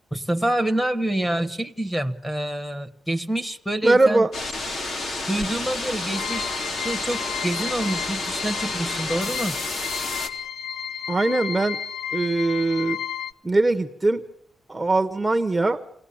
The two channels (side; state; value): both; normal; correlation 0.91